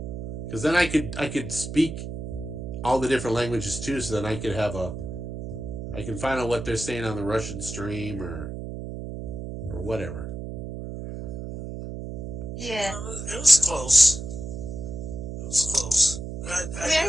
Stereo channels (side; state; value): right; noise; hum, 7 dB below the sound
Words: Because then I could speak all the different languages too, so then I can find out what they're saying on the Russian stream or whatever. Yeah. It was close. I